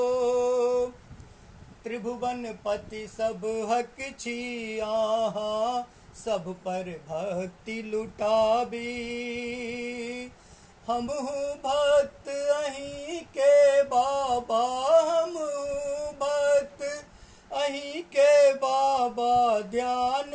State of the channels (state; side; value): identical; both; correlation 1.00